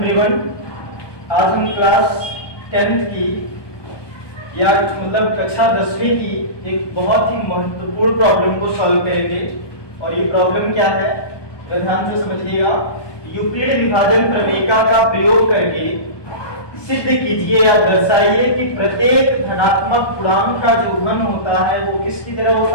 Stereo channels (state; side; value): late; right; 1.2 ms